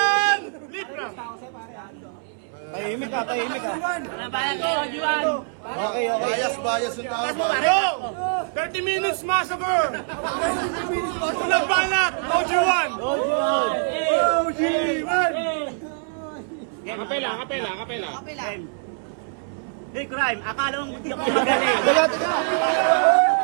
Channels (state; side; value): silent; left; 63 dB below the other